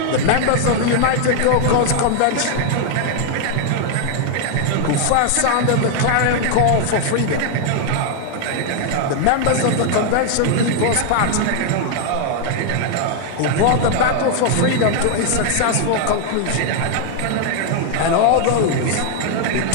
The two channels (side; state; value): both; different; correlation 0.00